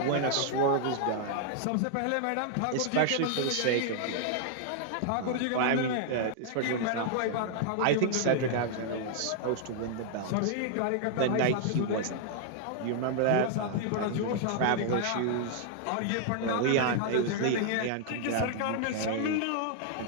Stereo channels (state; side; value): different; both; correlation 0.00